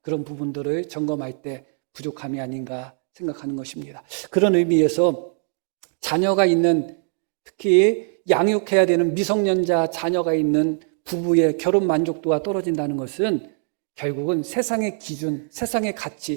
그런 부분들을 점검할 때 부족함이 아닌가 생각하는 것입니다. 그런 의미에서 자녀가 있는 특히 양육해야 되는 미성년자 자녀가 있는 부부의 결혼 만족도가 떨어진다는 것은 결국은 세상의 기준, 세상의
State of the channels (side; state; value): left; silent; 55 dB below the other